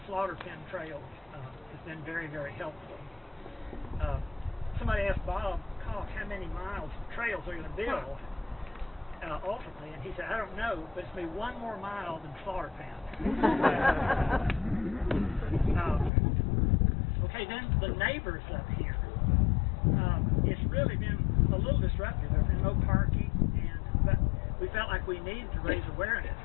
Slaughter Pen Trails has been very, very helpful. Somebody asked Bob Koch how many miles of trails they're going to build ultimately, and he said, I don't know, but it's going to be one more mile than Slaughter Pen. Okay, then the neighbors up here. It's really been a little disruptive. There's been no parking, but we felt like we needed to raise awareness.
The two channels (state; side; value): drops out; right; at 16.1 s